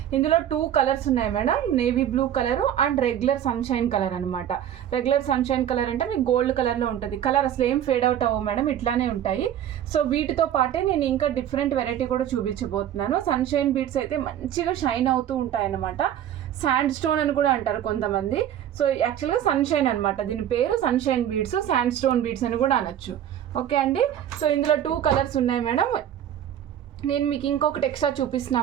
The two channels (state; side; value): quieter; left; 10.6 dB